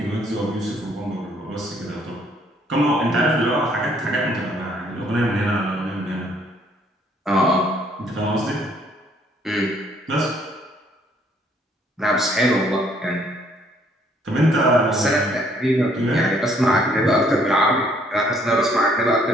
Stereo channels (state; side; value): normal; both; correlation 0.64